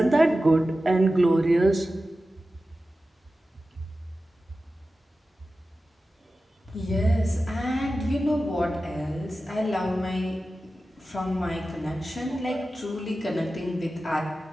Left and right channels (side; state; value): both; normal; correlation 0.94